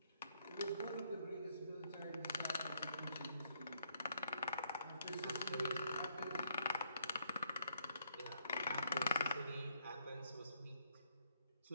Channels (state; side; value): inverted; both; correlation -0.71